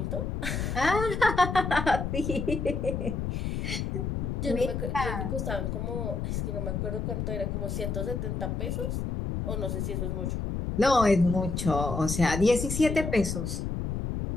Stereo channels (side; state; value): left; noise; rumble, 2 dB below the sound